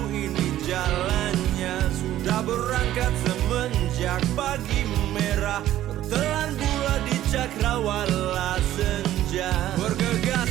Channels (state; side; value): quieter; left; 13.2 dB